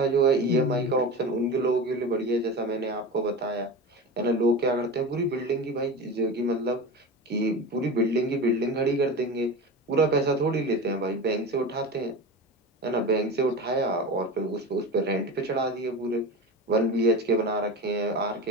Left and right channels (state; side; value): normal; both; correlation 0.28